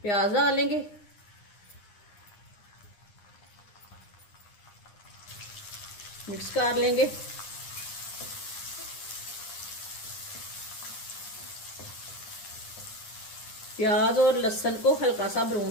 प्याज डालेंगे। मिक्स कर लेंगे। प्याज और लहसुन को हल्का सा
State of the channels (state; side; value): late; right; 9.8 ms